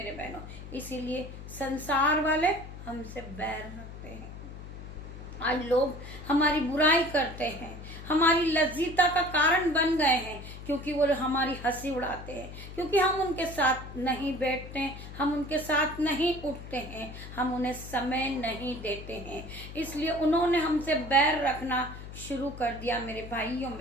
बहनों, इसीलिए संसार वाले हमसे बैर रखते हैं। आज लोग हमारी बुराई करते हैं, हमारी लज्जिता का कारण बन गए हैं, क्योंकि वो हमारी हंसी उड़ाते हैं, क्योंकि हम उनके साथ नहीं बैठते हैं, हम उनके साथ नहीं उठते हैं, हम उन्हें समय नहीं देते हैं। इसलिए उन्होंने हमसे बैर रखना शुरू कर दिया। मेरे भाइयों,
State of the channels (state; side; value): noise; left; hum, 12 dB below the sound